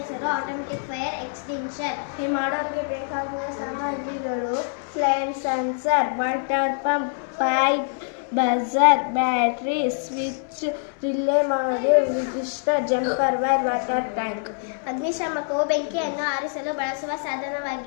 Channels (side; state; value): right; silent; 62 dB below the other